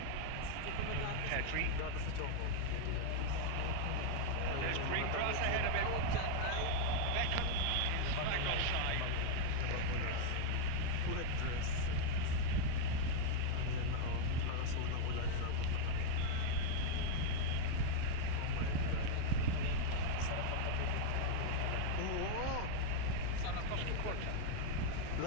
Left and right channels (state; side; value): different; both; correlation 0.00